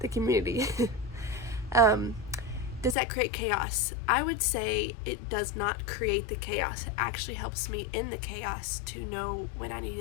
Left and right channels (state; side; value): drops out; right; at 3.0 s